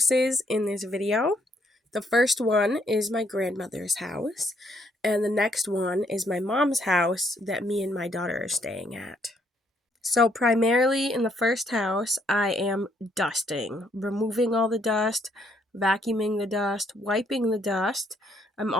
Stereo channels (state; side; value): normal; both; correlation 0.70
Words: in this video. The first one is my grandmother's house, and the next one is my mom's house that me and my daughter are staying at. So primarily in the first house, I am dusting, removing all the dust, vacuuming the dust, wiping the dust. I'm